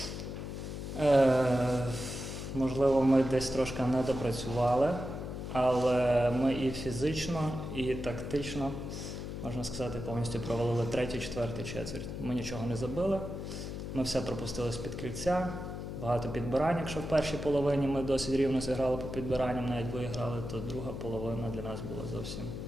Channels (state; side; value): noise; left; hum, 6 dB below the sound